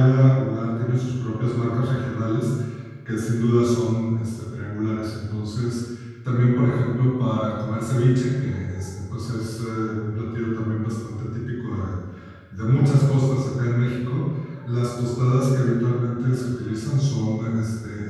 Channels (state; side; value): identical; both; correlation 1.00